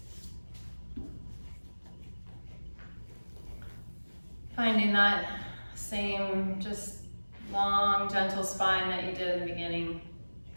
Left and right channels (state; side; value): inverted; both; correlation -1.00